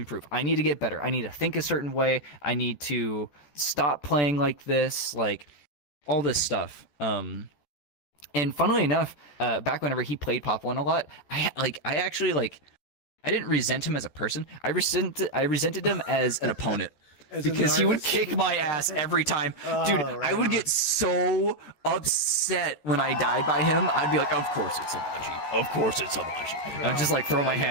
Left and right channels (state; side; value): late; right; 14 ms